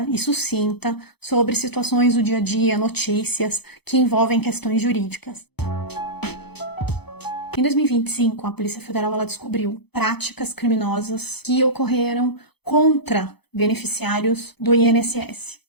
e sucinta sobre situações do dia a dia, notícias que envolvem questões jurídicas. Em 2025, a Polícia Federal ela descobriu práticas criminosas que ocorreram contra beneficiários do INSS.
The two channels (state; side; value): late; right; 0.98 ms